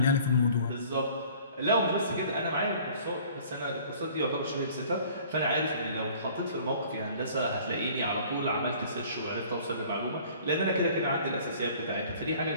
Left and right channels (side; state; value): both; inverted; correlation -0.51